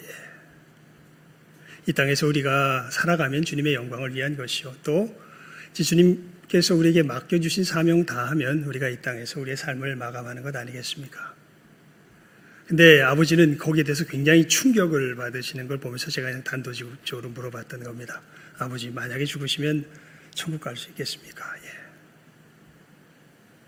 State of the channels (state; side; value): identical; both; correlation 1.00